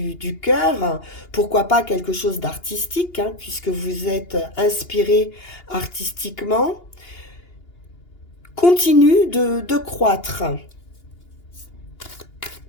cœur, pourquoi pas quelque chose d'artistique, puisque vous êtes inspiré artistiquement, continue de croître.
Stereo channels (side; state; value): right; late; 2.8 ms